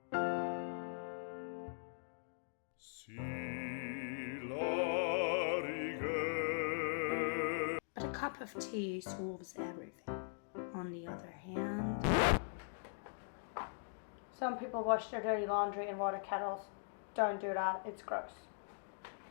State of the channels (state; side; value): silent; right; digital silence